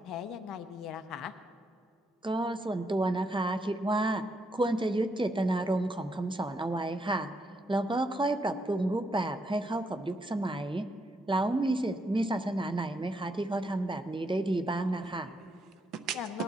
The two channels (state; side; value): normal; both; correlation 0.78